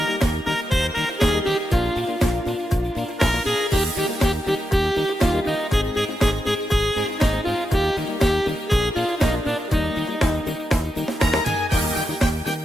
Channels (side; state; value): both; normal; correlation 0.86